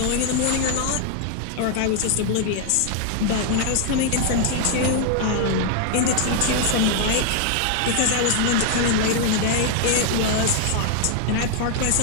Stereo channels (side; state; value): both; different; correlation 0.00